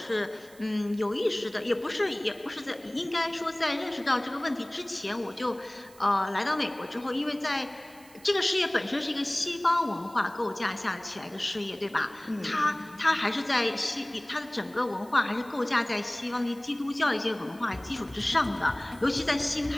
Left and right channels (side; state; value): right; noise; hiss, 24 dB below the sound